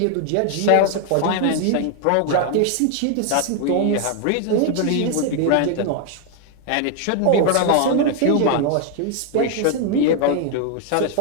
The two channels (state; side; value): different; both; correlation 0.00